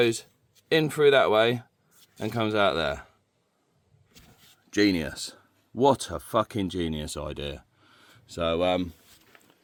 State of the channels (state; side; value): identical; both; correlation 1.00